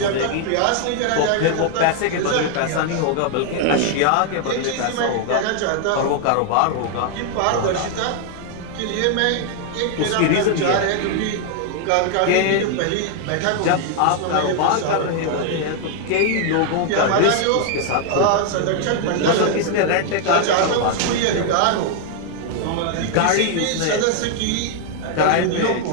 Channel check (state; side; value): different; both; correlation 0.00